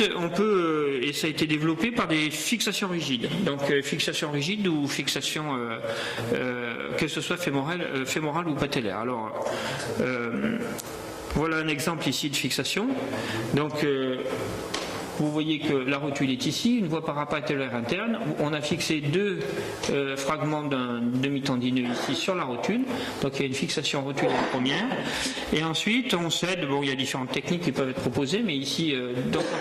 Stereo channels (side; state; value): both; identical; correlation 1.00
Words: on peut, et ça a été développé par des fixations rigides. Donc fixation rigide ou fixation, que ce soit fémorale ou patellaire. Alors, voilà un exemple ici de fixation. Donc, vous voyez que la rotule est ici, une voie parapatellaire interne. On a fixé deux fragments d'un demi-tendineux ici sur la rotule. Donc il y a une fixation rotulaire première. Et ensuite, on cède, bon, il y a différentes techniques qui peuvent être proposées, mais ici, donc